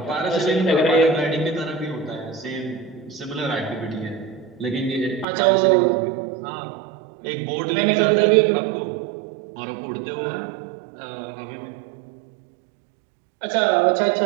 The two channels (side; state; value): left; drops out; at 5.2 s